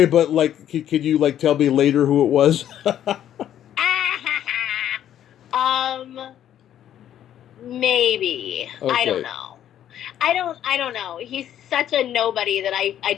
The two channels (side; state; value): right; quieter; 10.9 dB